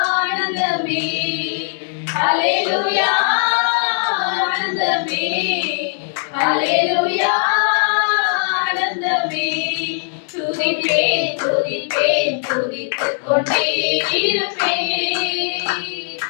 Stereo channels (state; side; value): silent; right; 60 dB below the other